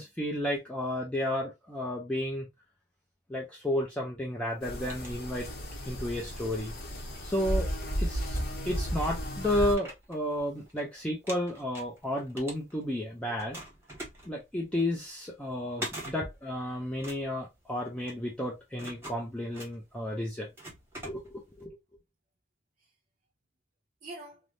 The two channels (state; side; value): normal; both; correlation 0.61